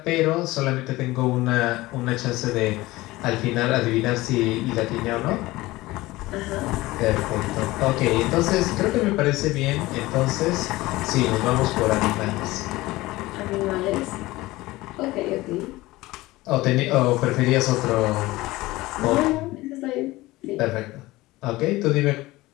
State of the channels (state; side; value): quieter; right; 19.2 dB